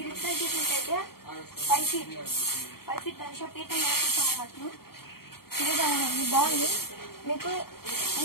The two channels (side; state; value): right; late; 0.94 ms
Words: ఇక్కడ చూసినట్టయితే 5 feet గణేష పీఠం మీద కూర్చోమన్నట్టు. ఇదిగా ఉంది, బాగుంది. మీకు